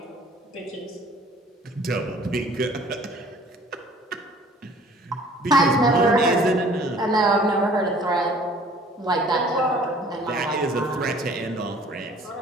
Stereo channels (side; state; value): both; normal; correlation 0.52